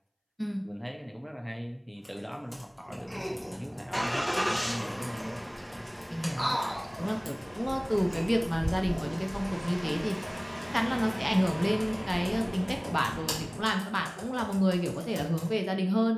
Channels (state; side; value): identical; both; correlation 1.00